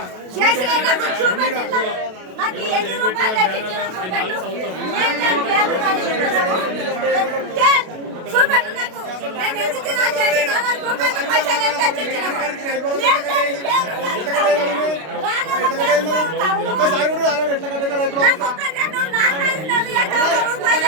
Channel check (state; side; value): late; left; 32 ms